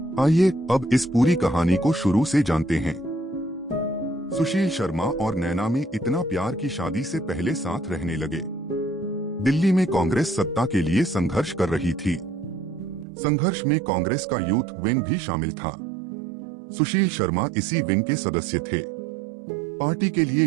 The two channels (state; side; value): drops out; left; at 13.1 s